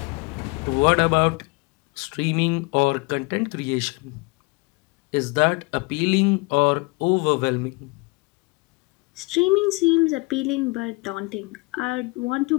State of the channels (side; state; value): right; quieter; 27.6 dB